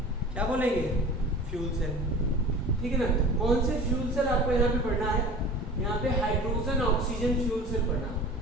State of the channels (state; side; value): normal; both; correlation 0.39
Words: क्या बोलेंगे? फ्यूल सेल, ठीक है ना। कौन से फ्यूल सेल आपको यहाँ पे पढ़ना है? यहाँ पे हाइड्रोजन ऑक्सीजन फ्यूल सेल पढ़ना